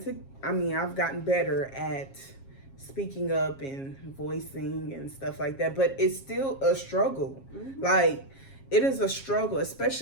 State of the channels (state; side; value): late; right; 7.4 ms